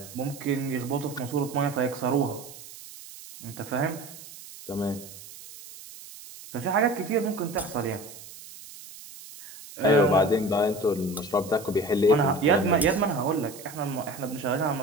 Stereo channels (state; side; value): noise; right; hiss, 16 dB below the sound